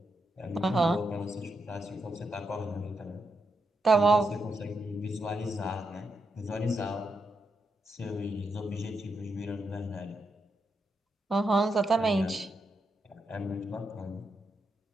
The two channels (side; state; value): both; normal; correlation 0.83